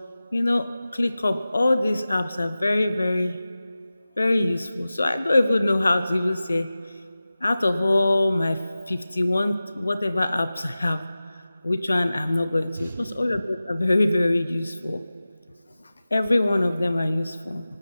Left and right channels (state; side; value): inverted; both; correlation -0.96